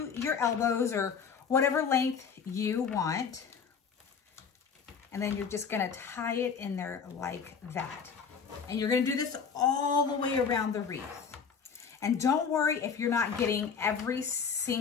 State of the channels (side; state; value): right; quieter; 6.3 dB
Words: your elbows or whatever length you want. And then you're just gonna tie it in there like that. And you're gonna do this all the way around the wreath. And don't worry if you're not getting every